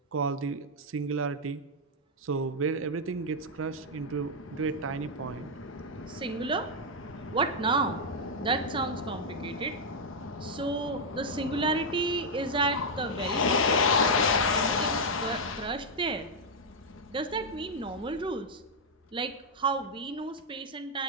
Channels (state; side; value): normal; both; correlation -0.02